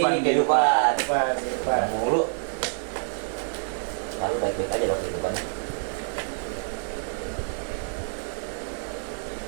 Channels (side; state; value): left; silent; 55 dB below the other